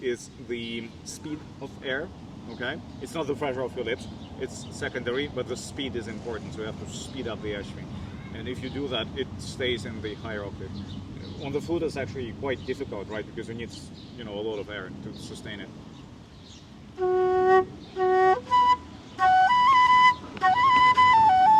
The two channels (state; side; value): identical; both; correlation 1.00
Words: is the speed of air. Okay. It's not the pressure of your lips. It's secondary, but the speed is important. So you have to speed up the airstream. And if you do that, it stays in the higher octave. On the flute, it's actually quite difficult, right? Because you need, a lot of air to sustain it.